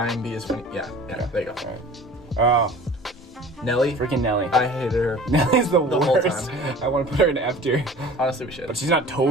and be as funny. Yeah, there you go. Alright. Oh, Nelly, freaking Nelly. I hated her. Nelly's the whole worst. time. I want to put her in F tier. Honestly, we should. But she's not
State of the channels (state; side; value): normal; both; correlation 0.44